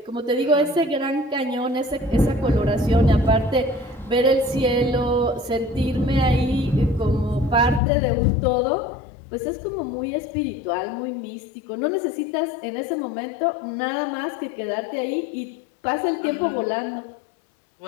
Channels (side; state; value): right; drops out; at 7.8 s